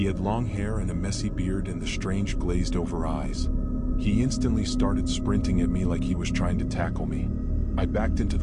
had long hair and a messy beard and the strange glazed-over eyes. He instantly started sprinting at me like he was trying to tackle me. I backed into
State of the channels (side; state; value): both; identical; correlation 1.00